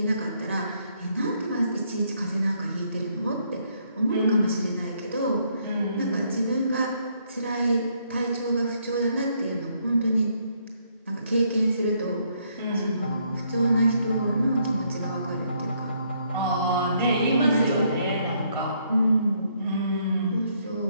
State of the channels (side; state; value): both; inverted; correlation -0.71